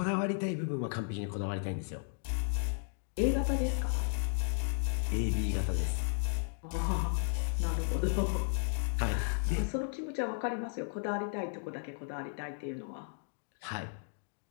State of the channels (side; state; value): right; silent; digital silence